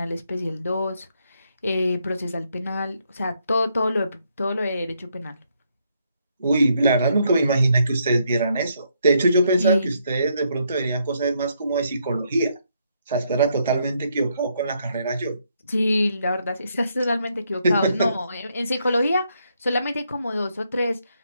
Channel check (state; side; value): inverted; both; correlation -0.74